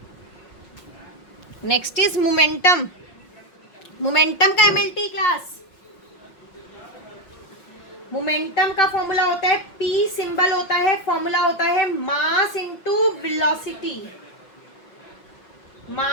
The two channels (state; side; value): late; right; 5.7 ms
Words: Next is momentum. Momentum का MLT class momentum का formula होता है पी, सिंबल होता है, फॉर्मूला होता है mass into velocity,